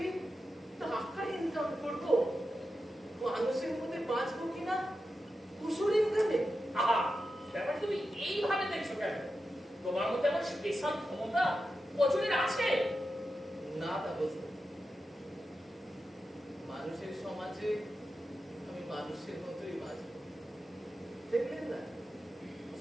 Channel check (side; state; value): both; normal; correlation 0.90